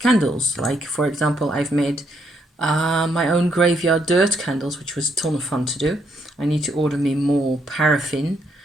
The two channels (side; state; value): both; normal; correlation 0.74